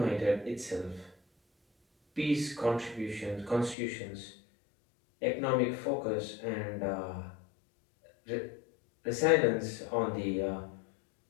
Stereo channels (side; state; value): right; drops out; at 3.8 s